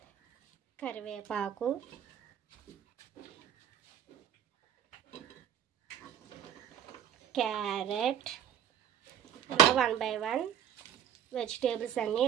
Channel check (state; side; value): quieter; left; 9.5 dB